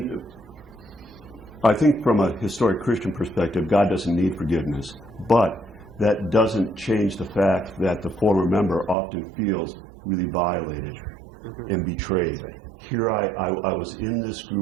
I think from a historic Christian perspective, God doesn't need forgiveness, but that doesn't change the fact that the former member often feels really violated and betrayed. Here I was in this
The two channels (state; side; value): drops out; left; at 9.0 s